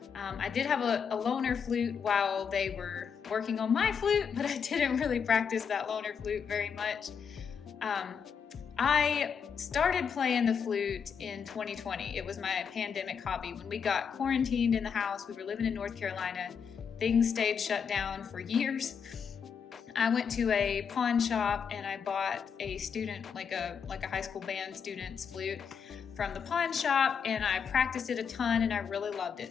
I did have a loaner flute while they were working on my flute, but I didn't really practice that loaner flute very much. I started playing the flute in 2020. It was my pandemic hobby. When we got quarantined in the house, we were living in North Carolina. Things stayed shut down for years. I went to a pawn shop and I bought a student, like a high school band student's flute from the pawn shop, and I practiced it a ton and I really loved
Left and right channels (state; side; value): quieter; right; 6.7 dB